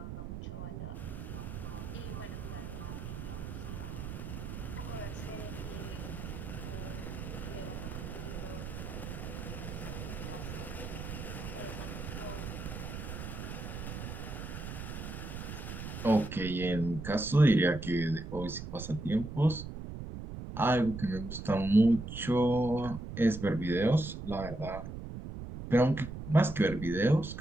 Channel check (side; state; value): right; noise; rumble, 7 dB below the sound